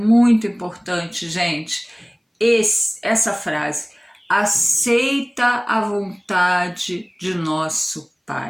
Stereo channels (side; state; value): both; identical; correlation 1.00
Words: importante, gente, essa frase: aceita a vontade de nosso